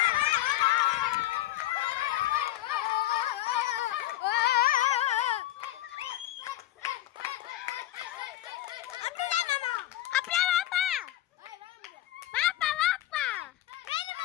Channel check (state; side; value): quieter; right; 14.9 dB